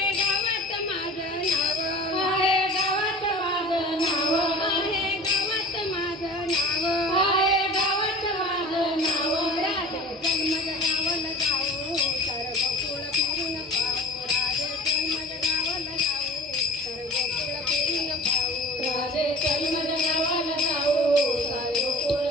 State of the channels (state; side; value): normal; both; correlation 0.40